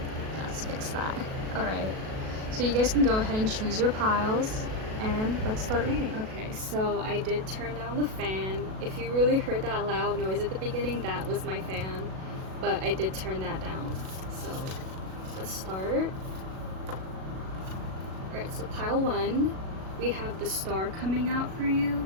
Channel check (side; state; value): left; late; 37 ms